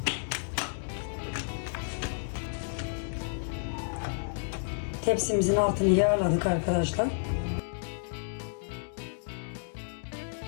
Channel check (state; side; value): silent; right; digital silence